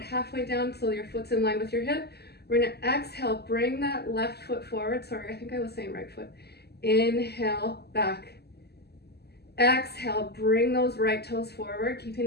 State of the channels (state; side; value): late; right; 0.47 ms